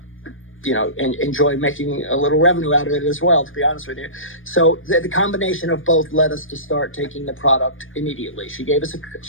enjoy making a little revenue out of it as well, to be honest with you. So the combination of both led us to start taking the product immediately. She gave us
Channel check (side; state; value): right; late; 0.59 ms